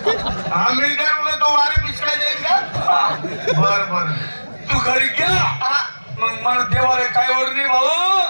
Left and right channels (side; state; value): both; inverted; correlation -1.00